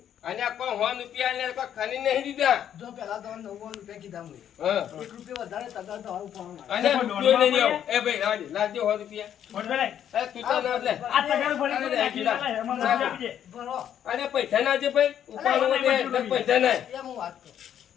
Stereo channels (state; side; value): quieter; right; 9.9 dB